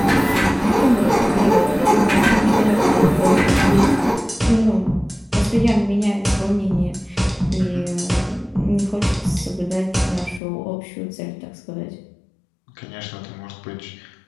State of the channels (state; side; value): drops out; right; at 10.4 s